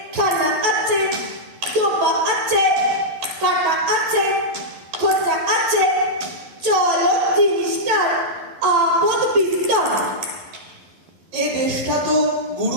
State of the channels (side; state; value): left; late; 11 ms